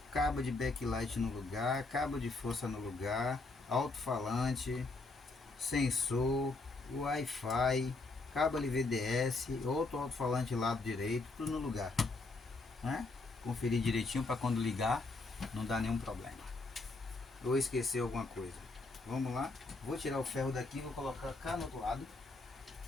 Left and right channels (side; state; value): right; quieter; 3.4 dB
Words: cabo de backlight no lugar, cabo de força no lugar, alto-falante, sensor, Wi-Fi, cabo LVDS, outro alto-falante lado direito, tudo no lugar, né? Conferir direitinho para quando ligar não dá nenhum problema. Ou esquecer alguma coisa. Vamos lá, vou tirar o ferro daqui, vou colocar cá no outro lado